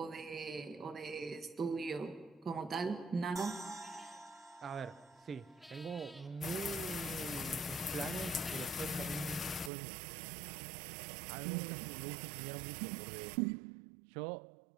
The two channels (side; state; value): left; drops out; at 9.7 s